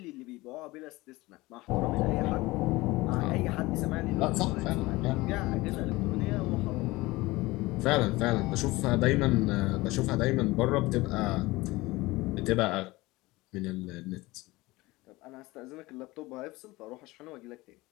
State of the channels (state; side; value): quieter; right; 20.7 dB